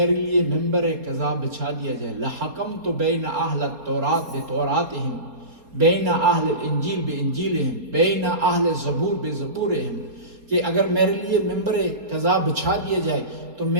لیے ممبر قضا بچھا دیا جائے، لحکمت بین اہل التورات بتوراتہم بین اہل الانجیل بانجیلہم بین اہل الزبور بزبورہم، کہ اگر میرے لیے ممبر قضا بچھا دیا جائے تو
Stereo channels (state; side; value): late; left; 4.3 ms